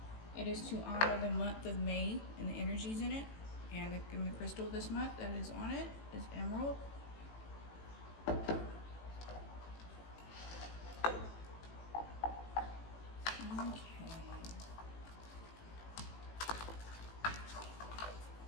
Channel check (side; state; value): right; late; 18 ms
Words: it is to honor the month of May and the energies in it, and the crystal this month that is on it is emerald. Okay.